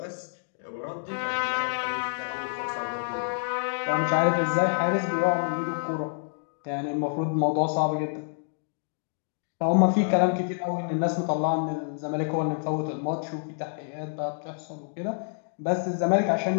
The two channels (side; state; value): right; silent; digital silence